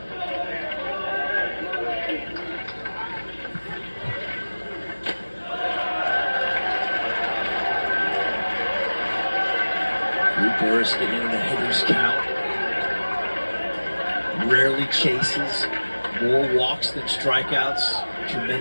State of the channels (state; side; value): inverted; both; correlation -1.00